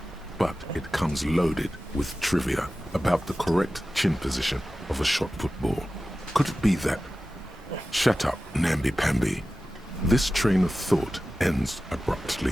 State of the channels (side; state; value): both; normal; correlation 0.95